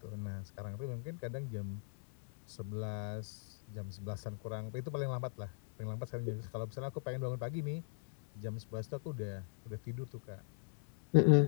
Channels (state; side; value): silent; right; 51 dB below the other